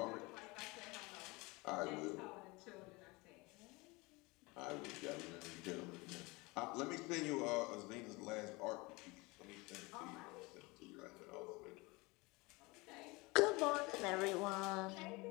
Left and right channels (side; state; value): right; quieter; 24.5 dB